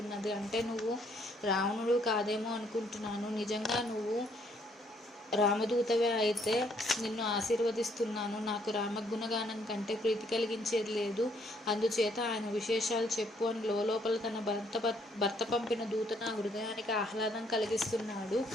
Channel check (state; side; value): normal; both; correlation 0.68